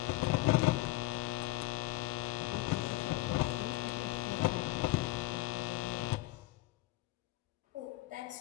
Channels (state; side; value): quieter; right; 19.0 dB